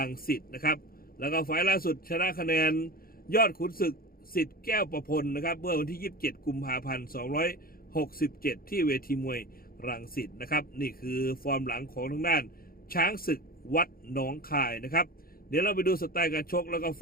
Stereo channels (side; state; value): right; late; 0.43 ms